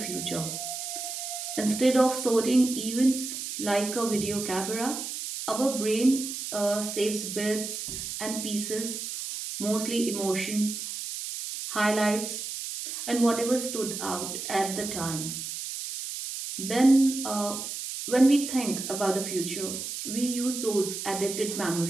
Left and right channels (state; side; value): noise; right; hiss, 6 dB below the sound